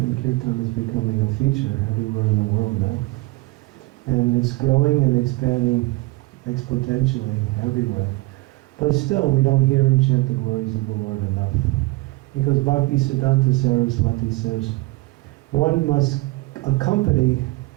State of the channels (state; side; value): quieter; left; 21.6 dB